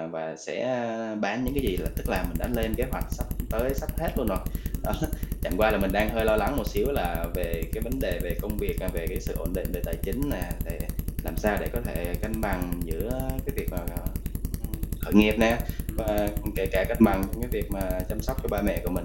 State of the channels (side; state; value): both; identical; correlation 1.00